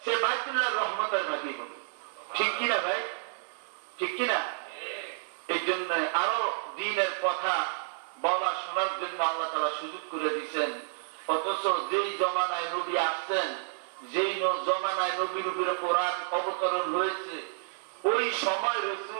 সে বাইতুল্লাহর রহমতের ভাগী হবে ঠিক কিনা ভাই ঠিক কিনা এই জন্য আরো দিনের কথা বলা শোনার জন্য আল্লাহ তাআলা সুযোগ করে দিয়েছেন অথচ যেই জমানায় নবী আসছেন যেই জমানায় নবীর উপরে কোরআন অবতরণ হয়েছে ওই সময়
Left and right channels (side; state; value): left; silent; digital silence